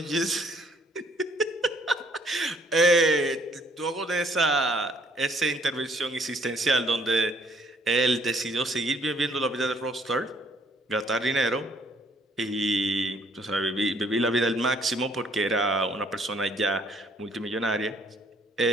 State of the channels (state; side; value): normal; both; correlation 0.63